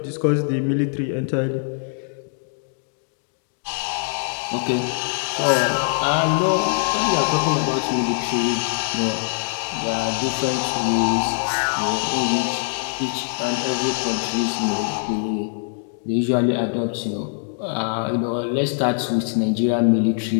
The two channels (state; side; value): silent; right; digital silence